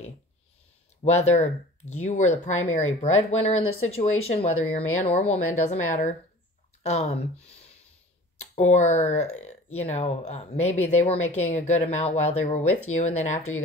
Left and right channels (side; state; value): both; normal; correlation 0.42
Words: Whether you were the primary breadwinner in the situation, whether you're man or woman, doesn't matter. Or, you know, maybe they were making a good amount while they were with you, and then after you